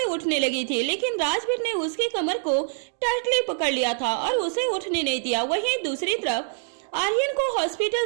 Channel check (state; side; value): silent; left; digital silence